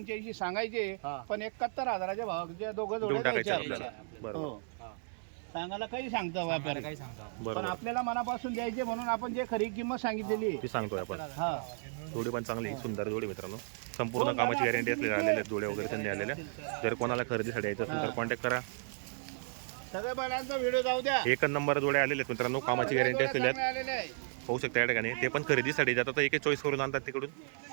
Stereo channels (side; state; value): left; silent; digital silence